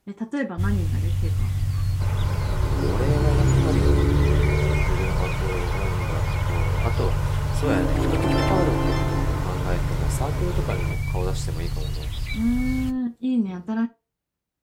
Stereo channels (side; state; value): both; identical; correlation 1.00